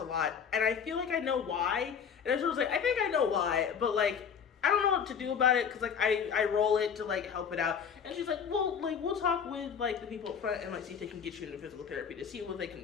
lot, and I feel like I know why. And I was like, I think I know why, but like, I don't know what to do about it, because like I roll it to like help it out. And she's like, well, like we'll talk with like the people up front and like see if they can get you into physical therapy to see what they can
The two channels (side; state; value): right; quieter; 7.1 dB